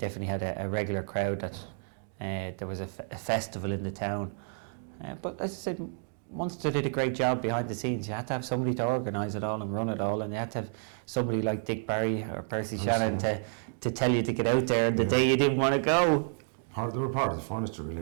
had a regular crowd. That there was a festival in the town, but as I said, Munster did a great job behind the scenes. You had to have somebody to organise it all and run it all, and you had to have somebody like Dick Barry or Percy Shannon to tell you to get out there the day you didn't want to go. They were part of the furniture,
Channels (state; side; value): silent; left; digital silence